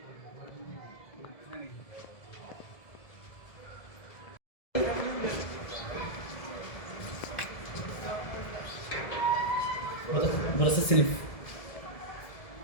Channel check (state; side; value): late; right; 1.7 ms